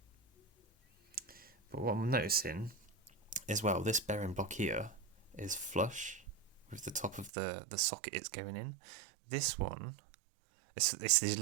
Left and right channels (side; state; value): left; drops out; at 7.3 s